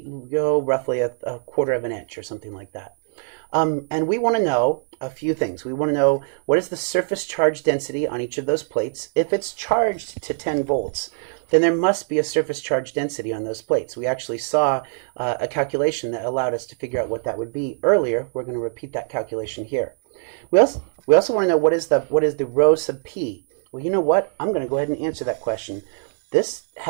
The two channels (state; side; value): silent; left; 64 dB below the other